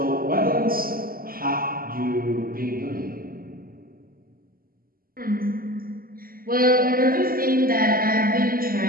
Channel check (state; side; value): late; left; 0.42 ms